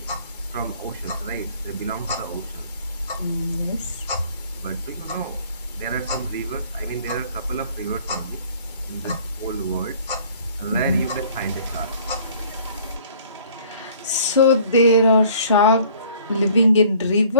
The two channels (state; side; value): inverted; both; correlation -0.53